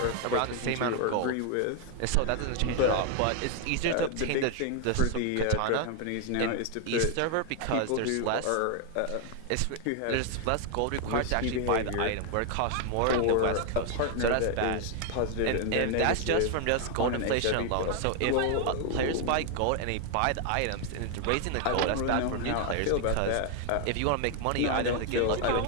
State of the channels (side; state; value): both; different; correlation 0.00